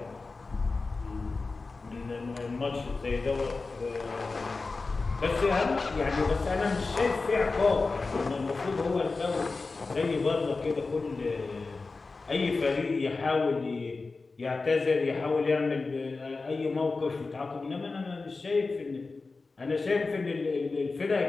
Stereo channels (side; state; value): right; quieter; 3.9 dB